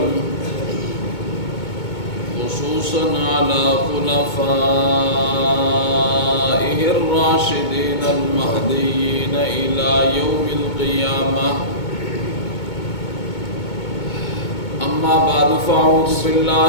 خصوصا على خلفائه الراشدين المهديين إلى يوم القيامة. أما بعد فأعوذ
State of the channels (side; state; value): right; late; 2.2 ms